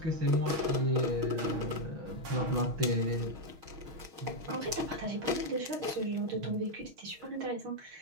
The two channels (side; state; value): left; late; 6.3 ms